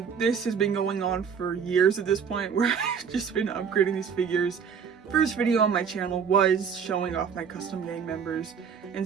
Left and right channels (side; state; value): left; quieter; 6.7 dB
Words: this has been going on for years at this point, where I've just been upgrading these figures. First video on my channel was showing off my custom gang members,